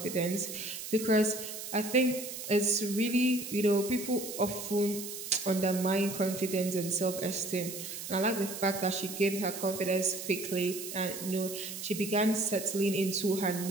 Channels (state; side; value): noise; right; hiss, 8 dB below the sound